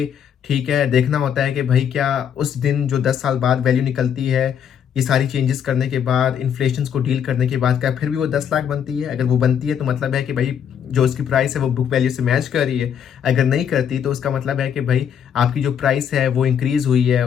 ठीक है, देखना होता है कि भाई क्या उस दिन जो 10 साल बाद वैल्यू निकलती है, ये सारी चेंजेस करने के बाद, इन्फ्लेशन को डील करने के बाद, क्या फिर भी वो 10 लाख बनती है? अगर वो बनती है तो मतलब है कि भाई जो उसकी प्राइस है वो बुक वैल्यू से मैच कर रही है। अगर नहीं करती तो उसका मतलब है कि भाई आपकी जो प्राइस है वो इंक्रीज हुई है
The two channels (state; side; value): quieter; right; 8.4 dB